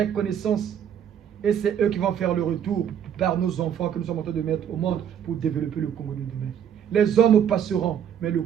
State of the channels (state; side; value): quieter; left; 9.0 dB